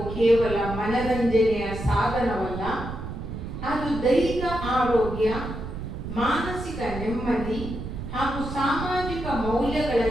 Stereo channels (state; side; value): noise; right; rumble, 8 dB below the sound